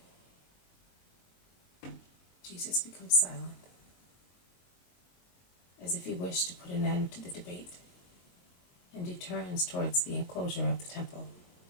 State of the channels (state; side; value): late; right; 22 ms